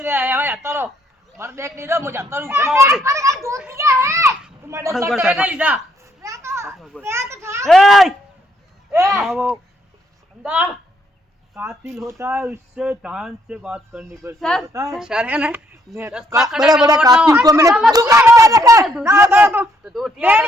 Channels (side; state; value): both; normal; correlation 0.71